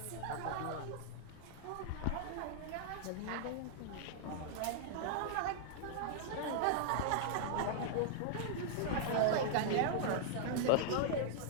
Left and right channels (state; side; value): different; both; correlation -0.01